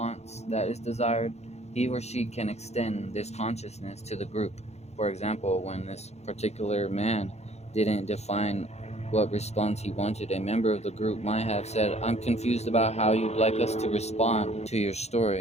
that is desired, he or she can extend this consciousness to the group. For example, when this particular man didn't define what response he wanted, a member of the group might have said, I'm confused about how you'd like us to respond to your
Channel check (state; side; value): late; right; 0.31 ms